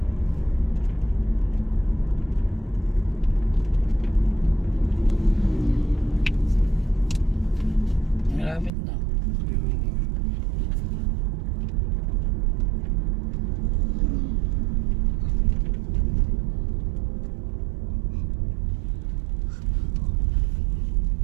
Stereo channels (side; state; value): left; drops out; at 8.7 s